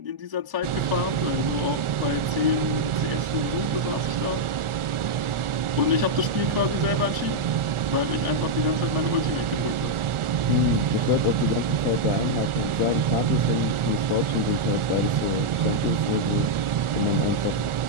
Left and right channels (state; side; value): late; left; 1.4 ms